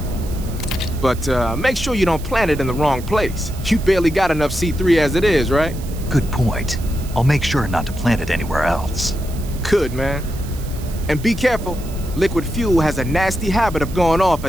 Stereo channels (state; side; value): noise; right; hiss, 18 dB below the sound